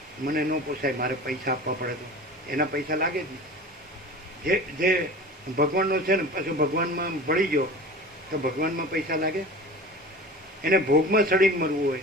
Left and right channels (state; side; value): normal; both; correlation 0.36